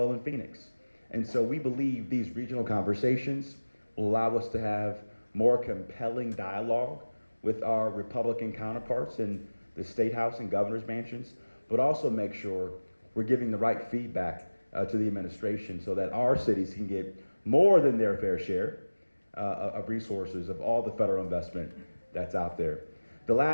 in Phoenix. And so we believe these regional conversations will allow us to have more compelling dialogue with our Republican counterparts in the State House and governor's mansions, but also make sure we're giving the right feedback to the administration so that our cities can get more than their fair share of resources of all the federal investment that's out there. The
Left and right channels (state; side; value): inverted; both; correlation -1.00